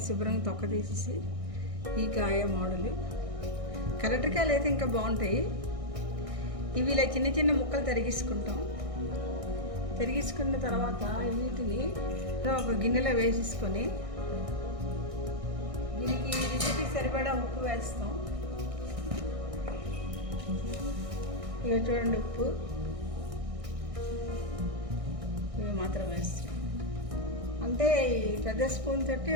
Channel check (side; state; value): left; late; 1.6 ms